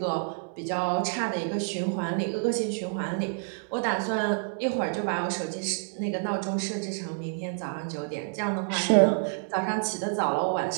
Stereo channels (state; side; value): silent; left; digital silence